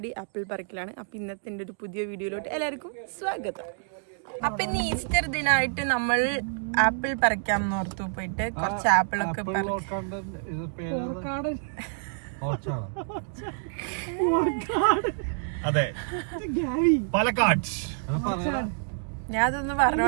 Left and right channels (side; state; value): left; silent; digital silence